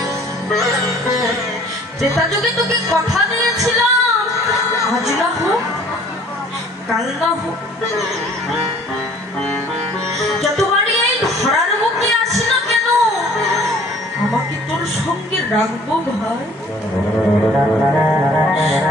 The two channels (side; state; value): both; normal; correlation 0.54